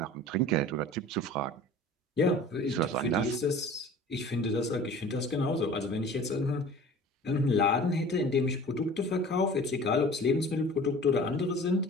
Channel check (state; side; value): normal; both; correlation 0.43